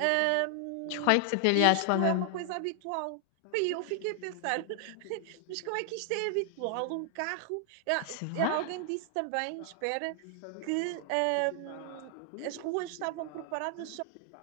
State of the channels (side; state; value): both; different; correlation 0.00